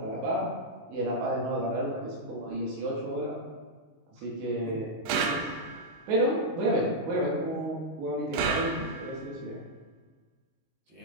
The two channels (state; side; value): late; left; 19 ms